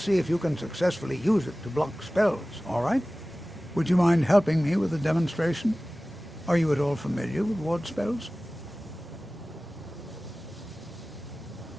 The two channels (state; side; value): normal; both; correlation 0.97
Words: if you can successfully use it to block spells, all right? Would you mind helping me with the demonstration? Are you at all familiar with ward spells?